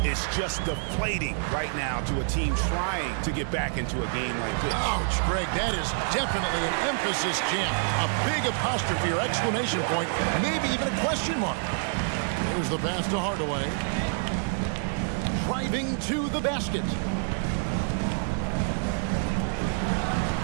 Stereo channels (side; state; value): left; silent; digital silence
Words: is just deflating right now to a team trying to get back into a game like this. Ouch, Greg, that is definitely an emphasis jam. A big apostrophe or exclamation point, maybe even a question mark. There's the pass to Hardaway. Driving to the basket.